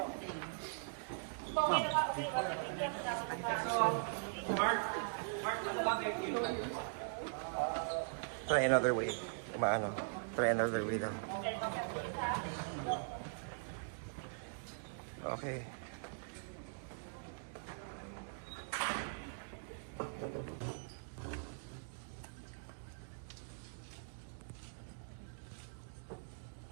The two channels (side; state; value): left; silent; digital silence